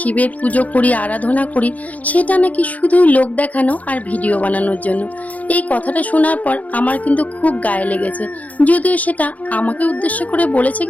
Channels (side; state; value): right; late; 0.073 ms